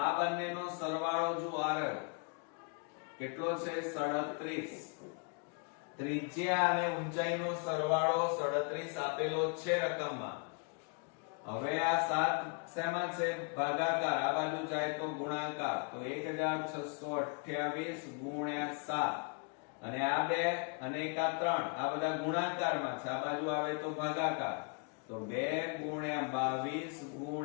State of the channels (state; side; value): quieter; right; 37.8 dB